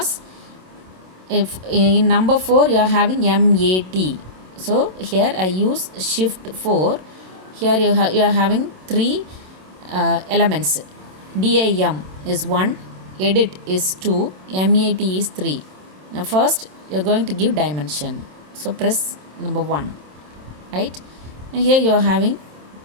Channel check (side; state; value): left; late; 27 ms